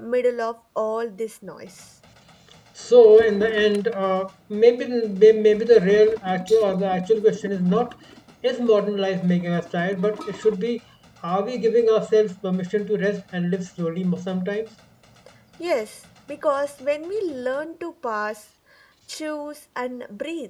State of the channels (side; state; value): both; identical; correlation 1.00